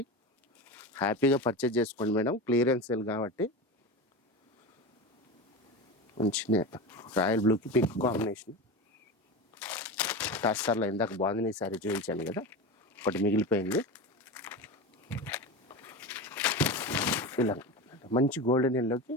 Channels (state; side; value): normal; both; correlation 0.25